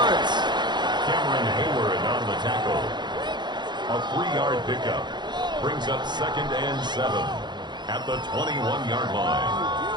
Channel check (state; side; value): late; left; 0.21 ms